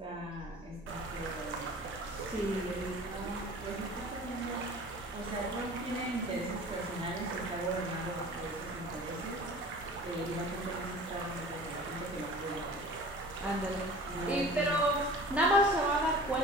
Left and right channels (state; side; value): normal; both; correlation 0.42